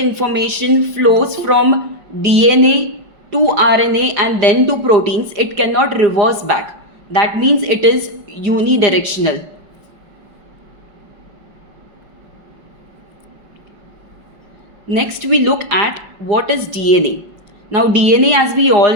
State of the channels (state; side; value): late; left; 5.2 ms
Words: flows from DNA to RNA and then to proteins, it cannot reverse back. That means it is unidirectional. Next, we look at what is DNA. Now, DNA, as we all